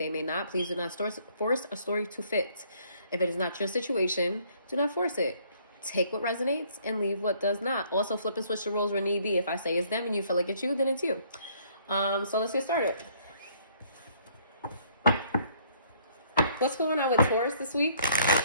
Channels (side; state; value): both; inverted; correlation -0.62